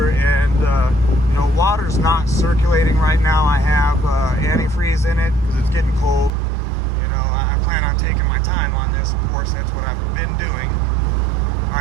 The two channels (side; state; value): left; drops out; at 6.3 s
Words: and you know, water's not circulating right now. I have antifreeze in it because it's getting cold. You know, I plan on taking my time on this. Of course, that's what I've been doing. All